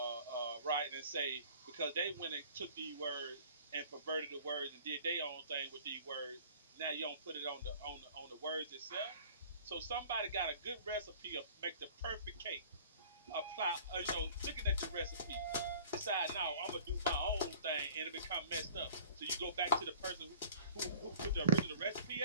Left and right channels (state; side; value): inverted; both; correlation -0.47